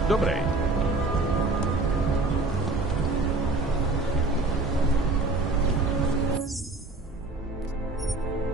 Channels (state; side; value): quieter; left; 3.3 dB